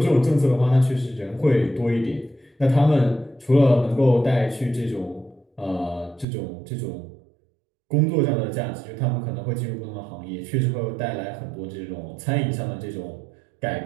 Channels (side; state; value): left; drops out; at 6.2 s